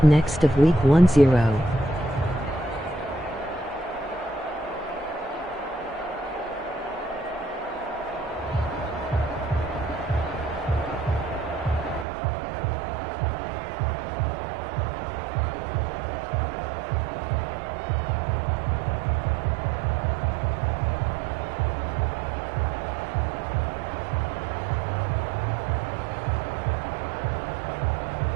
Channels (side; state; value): left; drops out; at 12.1 s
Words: next of Week 10.